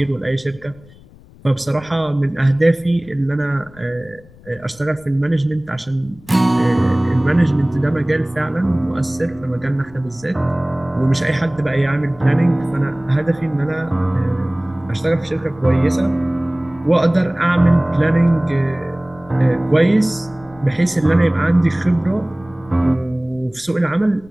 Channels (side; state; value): left; noise; rumble, 24 dB below the sound